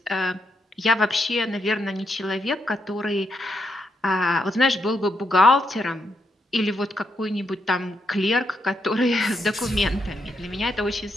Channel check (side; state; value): both; normal; correlation 0.79